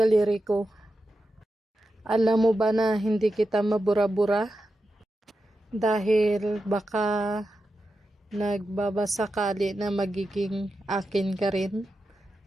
ko. Alam mo ba na hindi kita mabura-bura? Dahil baka nagbabasakali na magiging akin ka rin.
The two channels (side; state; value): both; normal; correlation 0.90